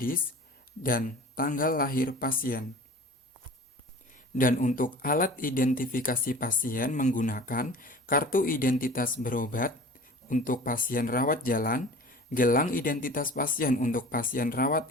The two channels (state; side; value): normal; both; correlation 0.41